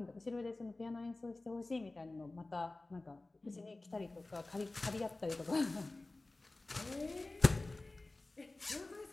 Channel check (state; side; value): quieter; right; 3.0 dB